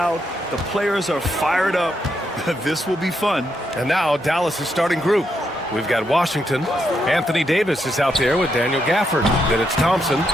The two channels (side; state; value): both; normal; correlation 0.80